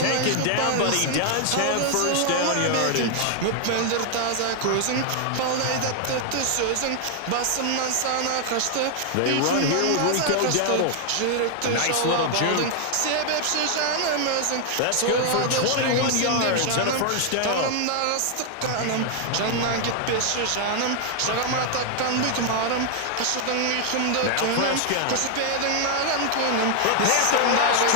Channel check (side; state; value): both; different; correlation 0.00